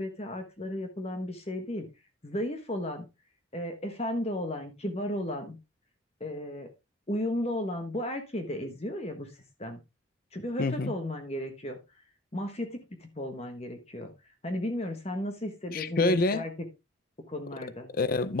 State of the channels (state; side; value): normal; both; correlation 0.46